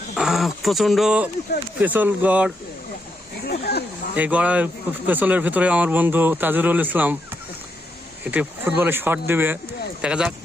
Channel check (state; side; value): normal; both; correlation 0.80